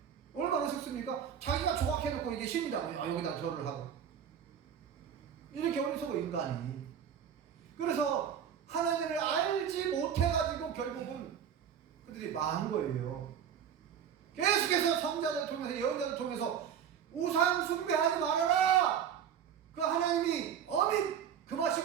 얼마나 어색습니까? 자기가 조각해놓고 이게 신이라고 여기다 절을 하고. 이렇게 어리석어 인간이. 그래서 하나님을 알지 못해가지고 결국은 그들이 망한 거예요. 계속해서 성자들 통해서, 예언자들 통해서 우상 숭배하지 말아라. 그 하나님이 어민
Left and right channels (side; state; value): left; quieter; 8.6 dB